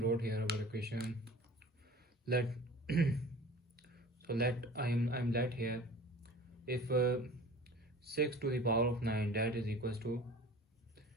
wrote here our equation, let I'm let here if 6 to the power of 9 that is equals to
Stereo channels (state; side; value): normal; both; correlation 0.42